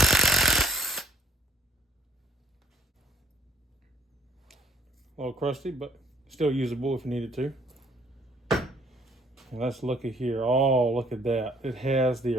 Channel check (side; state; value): both; normal; correlation 0.59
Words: little crusty, but still usable if you needed to. And let's look at here. Oh, look at that. It has the